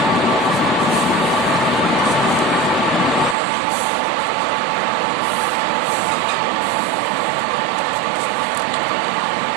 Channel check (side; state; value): left; drops out; at 3.4 s